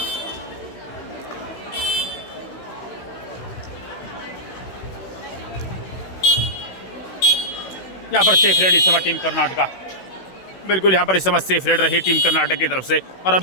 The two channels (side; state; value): right; late; 16 ms